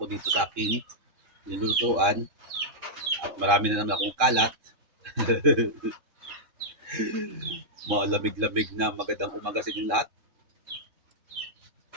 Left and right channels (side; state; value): left; late; 3.7 ms